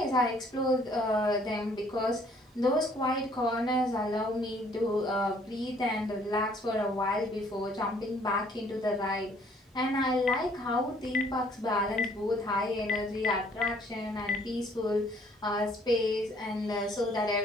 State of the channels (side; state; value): both; normal; correlation 0.61